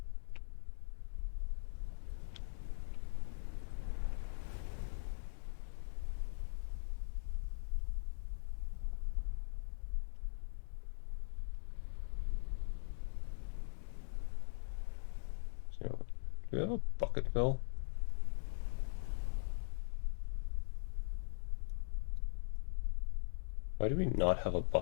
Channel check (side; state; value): right; silent; digital silence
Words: So, do we have a bucket fill? Why do we not have a